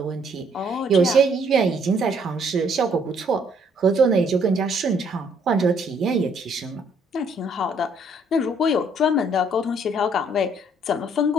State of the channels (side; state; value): both; normal; correlation 0.65